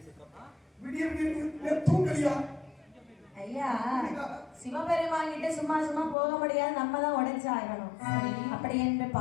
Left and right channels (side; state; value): right; drops out; at 6.2 s